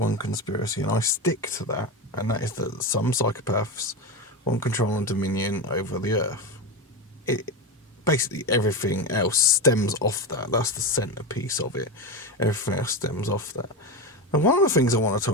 conspiracy, and I stick to that, and that is that some psychopaths want control and dominion over the earth. Basically, everything else stems off that. That's the centerpiece of it. Everything else stems off that. And one of the things I want to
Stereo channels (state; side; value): normal; both; correlation 0.18